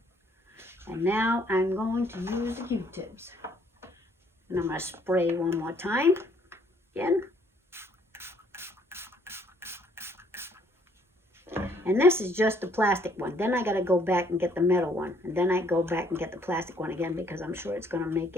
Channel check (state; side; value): normal; both; correlation 0.64